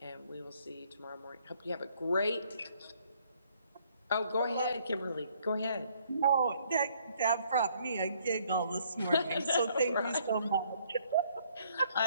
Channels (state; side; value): inverted; both; correlation -0.65